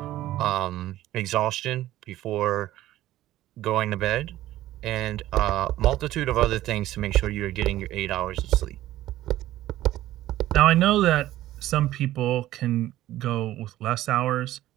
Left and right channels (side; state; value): left; quieter; 14.7 dB